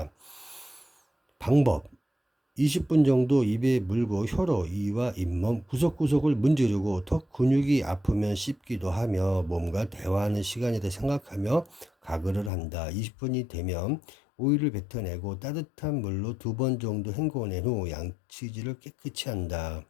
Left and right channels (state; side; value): drops out; right; at 12.5 s